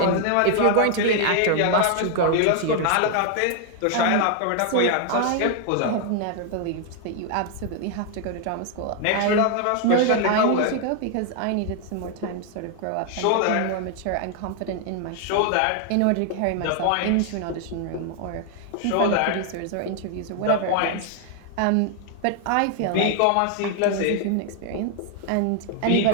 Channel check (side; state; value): both; different; correlation 0.00